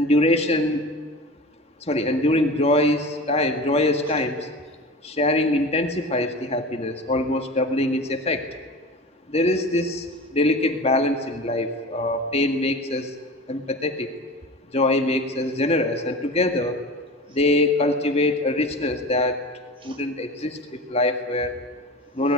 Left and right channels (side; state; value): both; normal; correlation 0.33